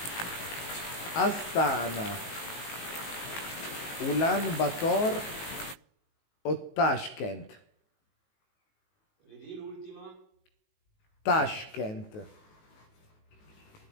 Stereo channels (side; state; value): right; late; 19 ms